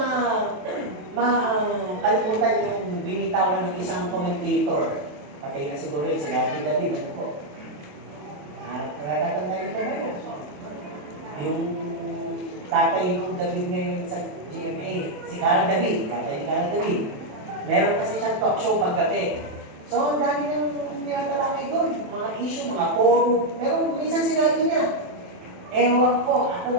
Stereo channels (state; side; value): late; left; 27 ms